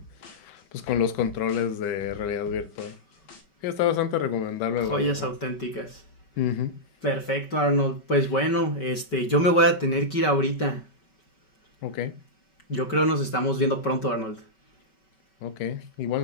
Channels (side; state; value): right; late; 5.3 ms